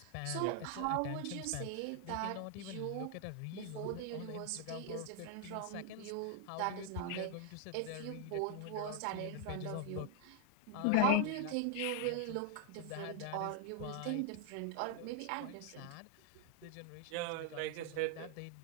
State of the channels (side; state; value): both; different; correlation 0.01